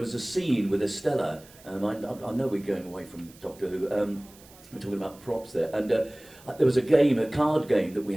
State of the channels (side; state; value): right; noise; hiss, 24 dB below the sound